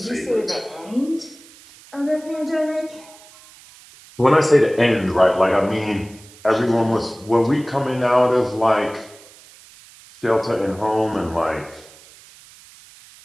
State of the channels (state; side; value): noise; right; hiss, 23 dB below the sound